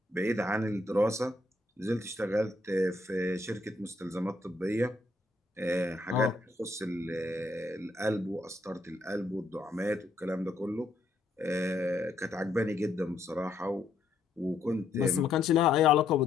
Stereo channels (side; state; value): right; quieter; 3.1 dB